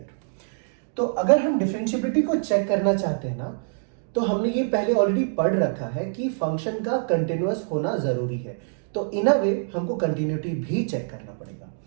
तो अगर हम डिफरेंशिएबिलिटी को चेक करना चाहते हैं ना, तो हमने ये पहले ऑलरेडी पढ़ रखा है कि फंक्शन का कंटिन्यूअस होना जरूरी है। तो इन अ वे हमको कंटिन्यूटी भी चेक करना पड़ेगा।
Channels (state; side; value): silent; left; digital silence